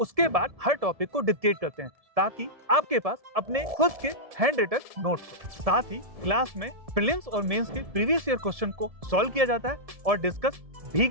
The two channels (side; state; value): left; late; 1.7 ms